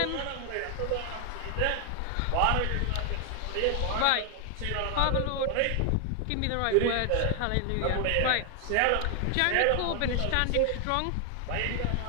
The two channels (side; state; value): both; different; correlation 0.00